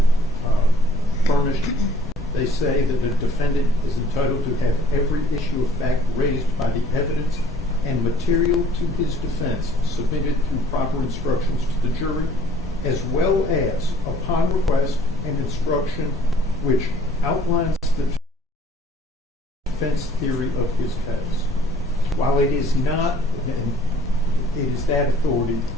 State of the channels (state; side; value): normal; both; correlation 0.55